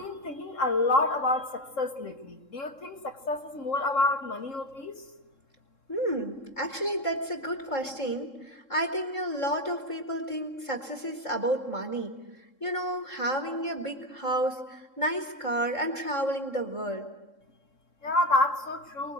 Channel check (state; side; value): late; right; 3.7 ms